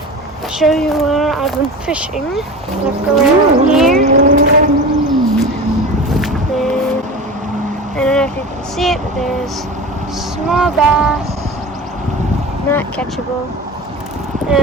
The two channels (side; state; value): both; normal; correlation 0.32